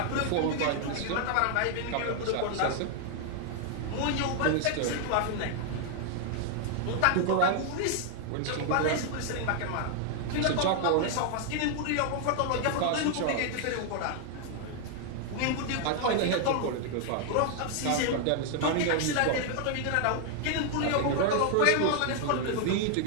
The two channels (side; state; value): both; different; correlation 0.00